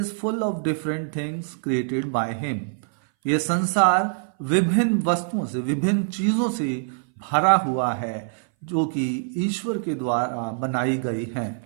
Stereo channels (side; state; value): left; silent; 59 dB below the other